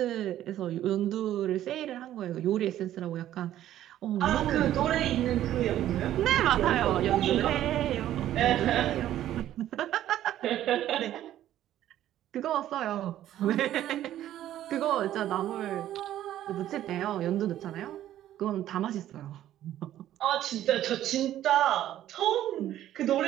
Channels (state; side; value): quieter; left; 12.5 dB